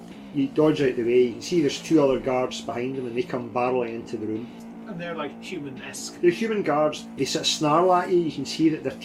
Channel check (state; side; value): identical; both; correlation 1.00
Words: You dodge out the way, you can see there's two other guards behind him and they come barreling into the room. And they're like human-esque. The human guards, they sort of snarl at you, you can see that their